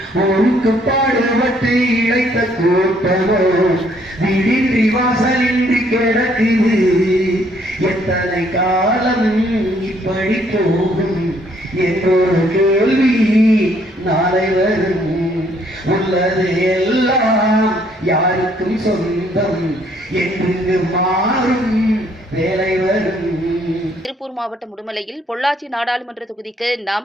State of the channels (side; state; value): both; normal; correlation 0.66